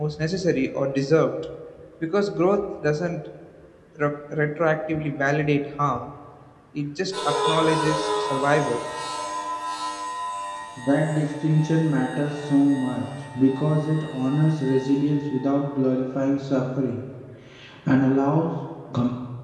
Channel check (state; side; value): identical; both; correlation 1.00